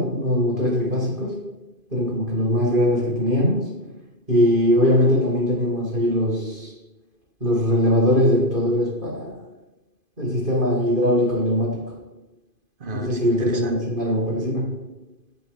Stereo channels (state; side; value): late; left; 2.5 ms